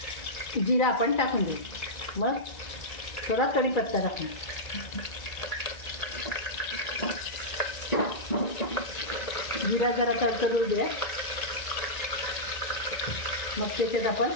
जिरा आपण टाकून देऊ। मग थोडा कढीपत्ता टाकू। जिरा जरा तडतडू द्या, मग त्याच्यात आपण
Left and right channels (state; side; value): late; right; 1.9 ms